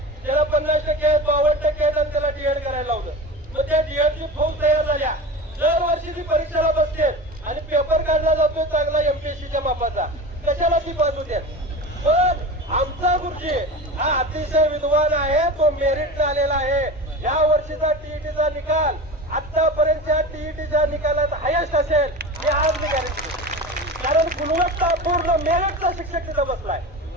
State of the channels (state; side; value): normal; both; correlation 0.30